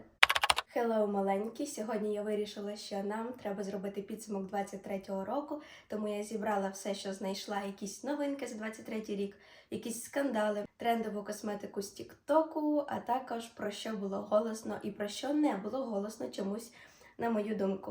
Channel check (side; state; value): both; identical; correlation 1.00